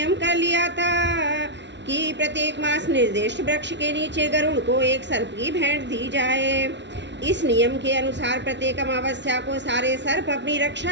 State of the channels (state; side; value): late; left; 0.51 ms